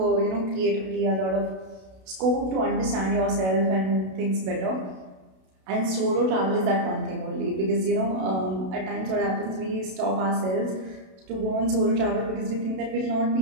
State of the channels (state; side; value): late; left; 32 ms